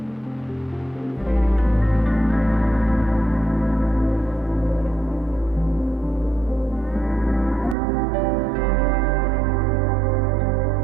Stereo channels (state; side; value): drops out; left; at 7.8 s